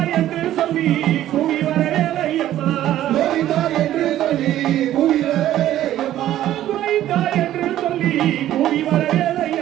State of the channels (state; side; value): quieter; left; 12.9 dB